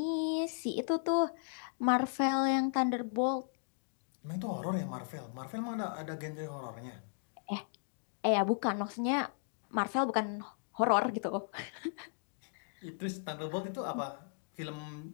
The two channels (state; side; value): silent; right; digital silence